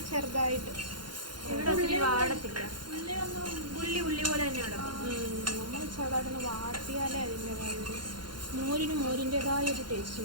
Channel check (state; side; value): late; left; 0.71 ms